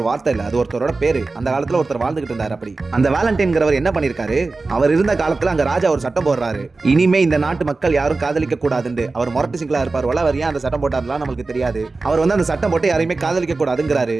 வார்த்தை இல்ல, அது ஒருத்தரோட பேரு. அந்த காலத்துல ஒருத்தர் வாழ்ந்துகிட்டு இருந்தார். அப்படி அந்த வேலண்டைன்ங்கிறவர் என்ன பண்ணிருக்காரு, அவர் இருந்த காலத்துல அங்க ராஜா ஒரு சட்டம் போடுறாரு, இனிமே இந்த நாட்டு மக்கள் யாரும் காதலிக்க கூடாதுன்னு. அவர் மொரட்டு சிங்களா இருப்பார், அவர் ஏன் அந்த சட்டம் போட்டாருலாம் நமக்கு தெரியாது. அவர் வந்து அந்த சட்டம் போட்டு யாரையுமே காதலிக்க கூடாதுங்கிறாரு.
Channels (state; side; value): quieter; left; 3.7 dB